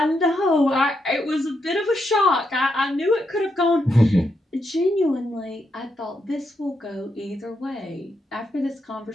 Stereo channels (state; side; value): normal; both; correlation 0.81